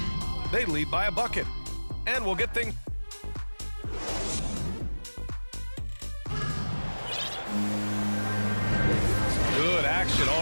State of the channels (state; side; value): inverted; both; correlation -1.00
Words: They lead by a bucket, and we'll get things. Good action